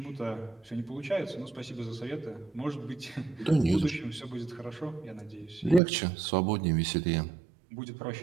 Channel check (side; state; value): left; drops out; at 5.8 s